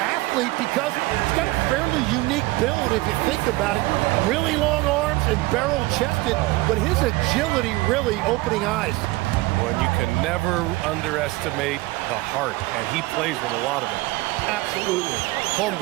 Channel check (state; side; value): quieter; left; 20.6 dB